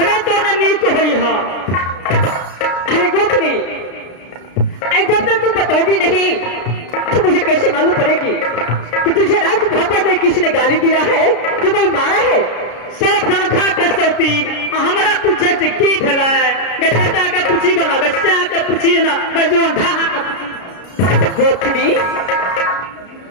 तो न नीक होई है। अरे गोत्री, जब तक तू बताओगी नहीं तो मुझे कैसे मालूम पड़ेगी कि तुझे राज भवन में किसी ने गाली दिया है, कि कोई मारा है? सब धनखा के सौती हमारा पूछे से की भला है? बेटा के पूछी गला, बच्चा के पूछी ना, जो ढाहा का पूछी। गोत्री,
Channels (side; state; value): right; late; 33 ms